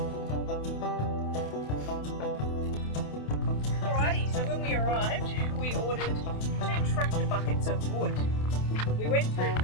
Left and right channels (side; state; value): right; late; 28 ms